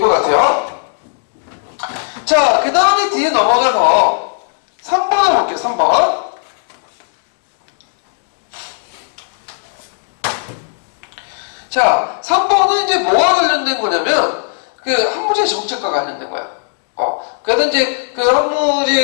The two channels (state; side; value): silent; right; digital silence